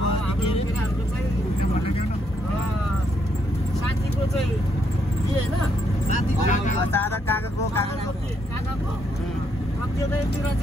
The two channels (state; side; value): normal; both; correlation 0.75